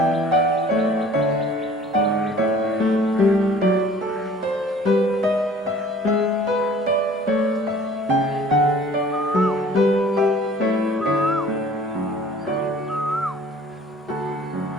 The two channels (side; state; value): both; normal; correlation 0.50